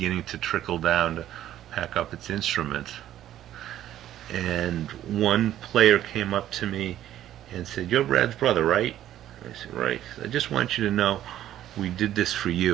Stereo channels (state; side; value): quieter; left; 12.3 dB